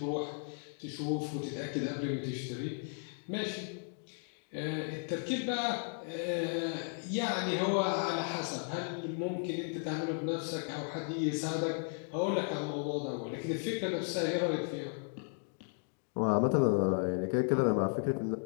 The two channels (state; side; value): silent; right; 54 dB below the other